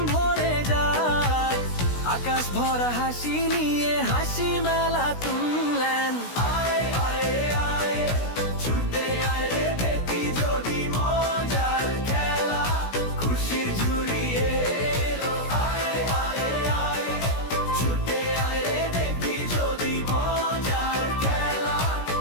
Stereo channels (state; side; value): late; right; 16 ms